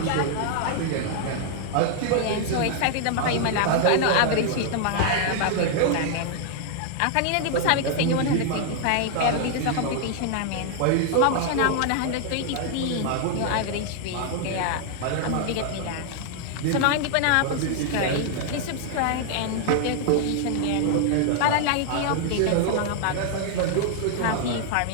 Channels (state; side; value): different; both; correlation 0.00